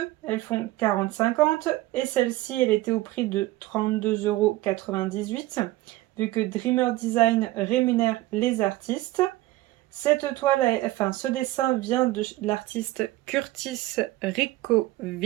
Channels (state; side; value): quieter; left; 17.6 dB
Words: elles font 40,50. Et celle-ci, elle était au prix de 32,98 € vu que Dreamer Design rémunère les artistes. Cette toile, enfin ce dessin vient de l'artiste Curtis